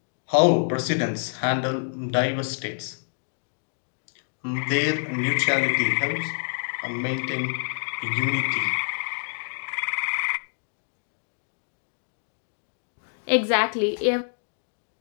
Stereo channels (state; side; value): silent; right; 59 dB below the other